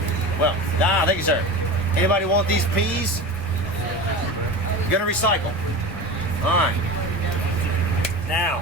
Well, thank you, sir. Anybody want these peas? Gonna recycle. All right. Now,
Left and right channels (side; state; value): both; normal; correlation 0.29